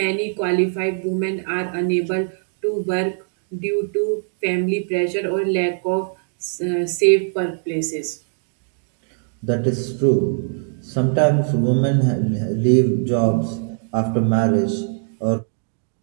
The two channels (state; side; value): silent; left; 65 dB below the other